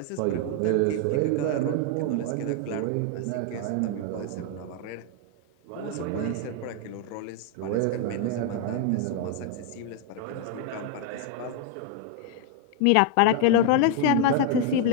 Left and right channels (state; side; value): different; both; correlation 0.00